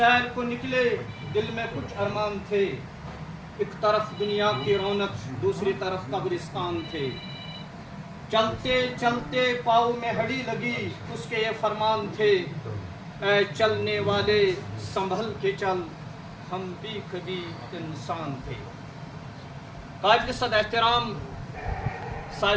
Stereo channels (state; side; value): identical; both; correlation 1.00